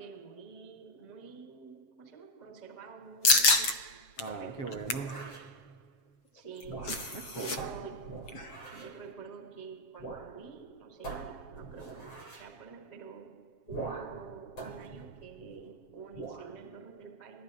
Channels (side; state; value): right; late; 7.4 ms